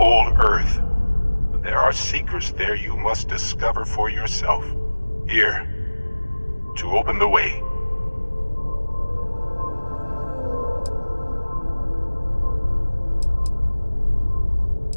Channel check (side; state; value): both; inverted; correlation -1.00